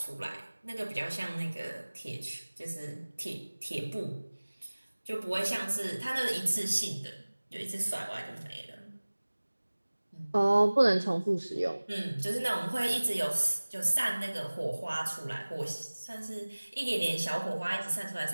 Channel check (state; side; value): inverted; both; correlation -1.00